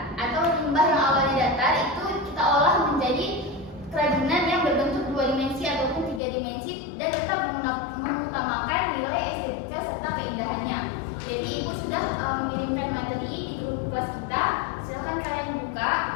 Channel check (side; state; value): right; drops out; at 6.2 s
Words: atau limbah yang awalnya datar itu kita olah menjadi kerajinan yang berbentuk 2 dimensi ataupun 3 dimensi dan tetap mengutamakan nilai estetika serta keindahannya. Jadi Ibu sudah mengirimkan materi di grup kelas kita. Silahkan kalian buka.